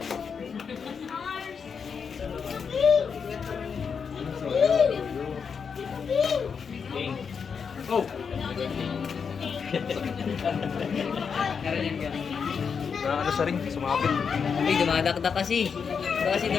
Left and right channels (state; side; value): quieter; right; 6.2 dB